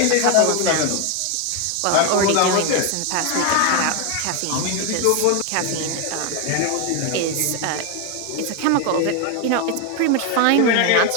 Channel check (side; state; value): both; different; correlation 0.01